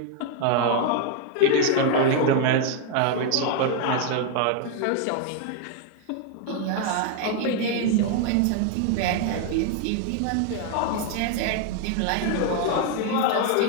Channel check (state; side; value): different; both; correlation 0.00